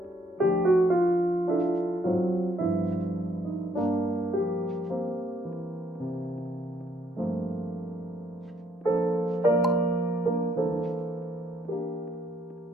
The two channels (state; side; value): normal; both; correlation 0.69